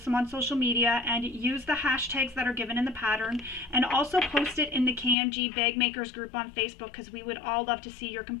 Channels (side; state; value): right; drops out; at 5.2 s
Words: them on social media and use the hashtags that are given in the pattern, and also post it in the KMG Bag Makers group on Facebook, because we would all love to see your